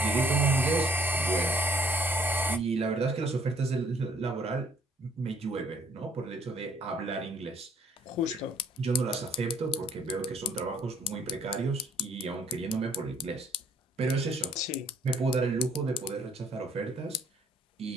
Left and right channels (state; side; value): normal; both; correlation 0.62